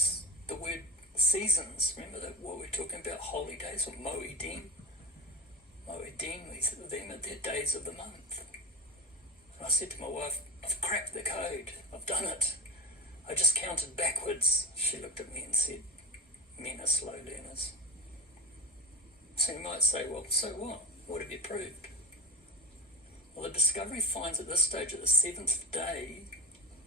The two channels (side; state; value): both; normal; correlation 0.29